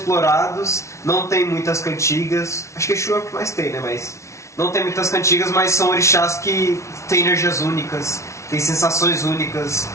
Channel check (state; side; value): late; right; 0.14 ms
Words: não tem muitas cantigas. Acho que Exu é o que mais tem, né? Mas não tem muitas cantigas, mas são orixás que têm energias únicas, têm sensações únicas.